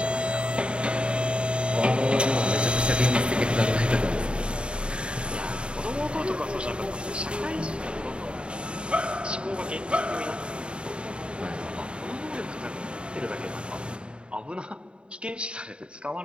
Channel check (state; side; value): late; left; 0.054 ms